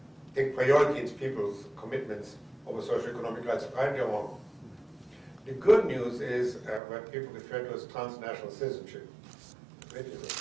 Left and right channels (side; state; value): left; drops out; at 6.8 s